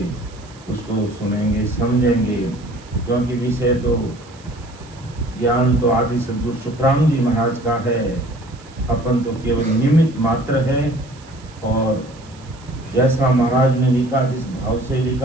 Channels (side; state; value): right; noise; hiss, 24 dB below the sound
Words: उसको सुनेंगे समझेंगे। क्योंकि विषय तो ज्ञान तो आदि सद्गुरु सुखराम जी महाराज का है, अपन तो केवल निमित्त मात्र है। और जैसा महाराज ने लिखा, जिस भाव से